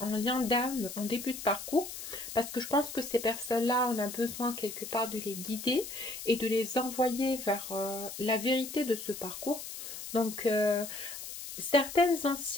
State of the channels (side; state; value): left; noise; hiss, 9 dB below the sound